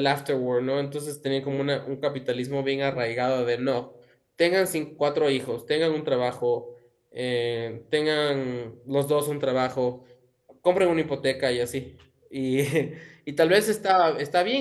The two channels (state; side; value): identical; both; correlation 1.00